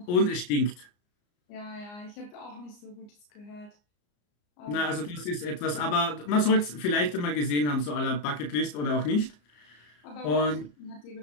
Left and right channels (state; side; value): late; right; 34 ms